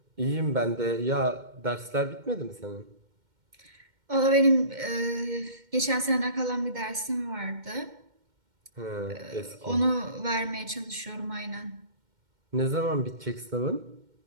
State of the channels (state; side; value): late; left; 2.1 ms